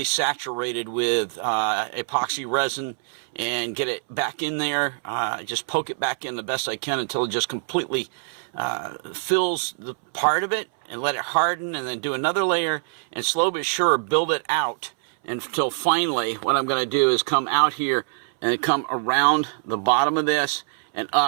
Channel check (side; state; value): left; silent; 63 dB below the other